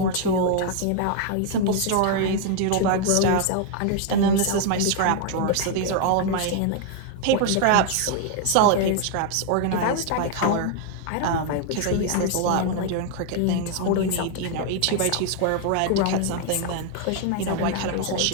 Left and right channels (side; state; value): both; different; correlation 0.00